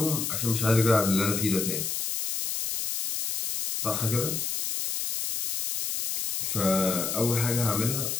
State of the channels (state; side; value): noise; left; hiss, 2 dB below the sound